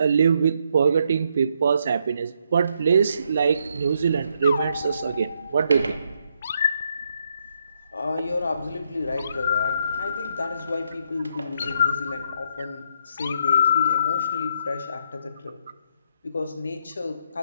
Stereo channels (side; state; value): both; inverted; correlation -0.75